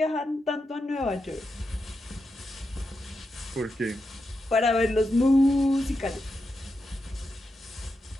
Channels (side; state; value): both; normal; correlation 0.86